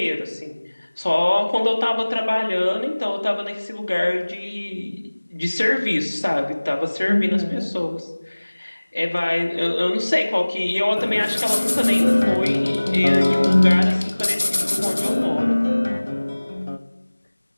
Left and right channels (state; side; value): inverted; both; correlation -1.00